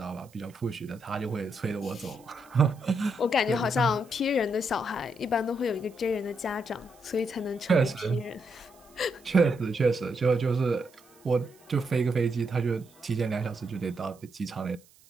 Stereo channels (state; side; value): noise; right; hiss, 28 dB below the sound